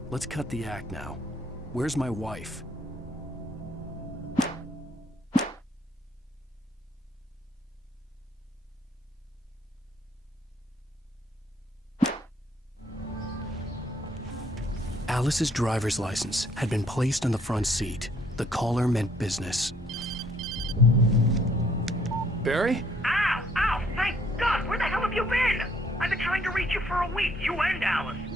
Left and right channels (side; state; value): both; normal; correlation 0.65